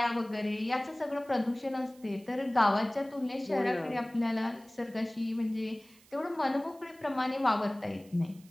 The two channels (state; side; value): noise; right; hiss, 27 dB below the sound